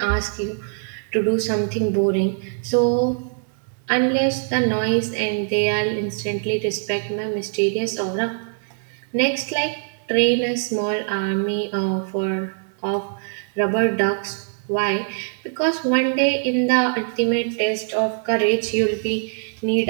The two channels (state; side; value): silent; left; digital silence